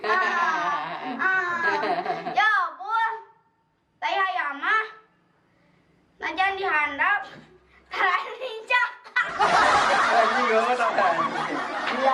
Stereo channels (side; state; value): both; identical; correlation 1.00